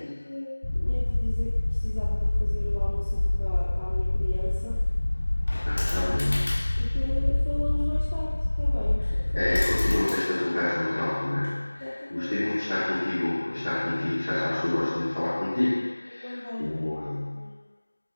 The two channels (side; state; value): both; inverted; correlation -1.00